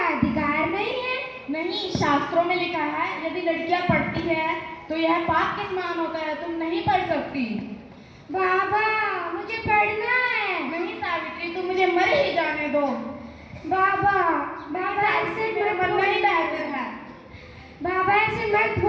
अधिकार नहीं है? नहीं, शास्त्रों में लिखा है यदि लड़कियां पढ़ती है तो यह पाप के समान होता है, तुम नहीं पढ़ सकती। बाबा, मुझे पढ़ना है। नहीं सावित्री, तुम मुझे मर ही जाने दो। बाबा, बाबा ऐसे मरना ही बेहतर है। बाबा ऐसे मत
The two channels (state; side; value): identical; both; correlation 1.00